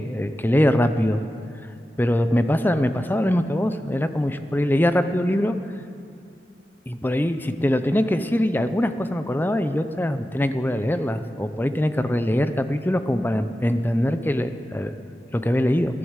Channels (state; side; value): normal; both; correlation 0.92